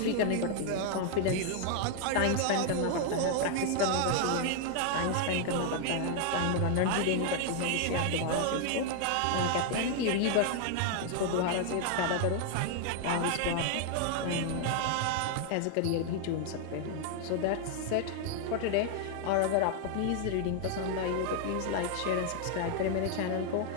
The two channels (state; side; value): different; both; correlation 0.00